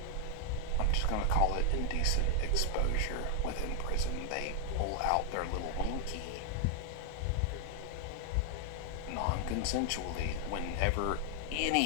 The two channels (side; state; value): both; different; correlation 0.00